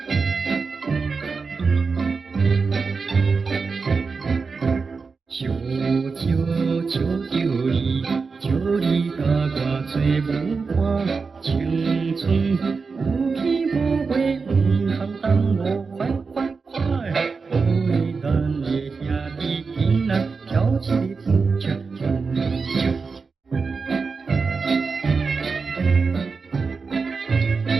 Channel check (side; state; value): left; quieter; 4.8 dB